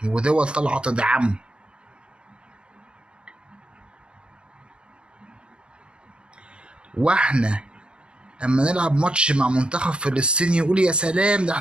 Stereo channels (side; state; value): left; late; 0.055 ms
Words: ودول طالعة تدعمه. واحنا اما نلعب ماتش مع منتخب فلسطين يقول يا سلام ده